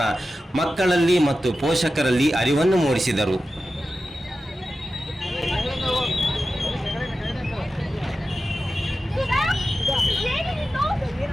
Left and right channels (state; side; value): normal; both; correlation 0.93